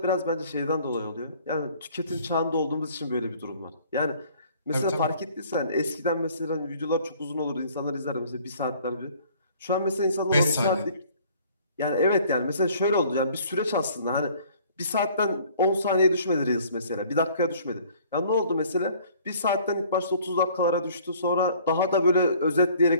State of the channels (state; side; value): inverted; both; correlation -0.56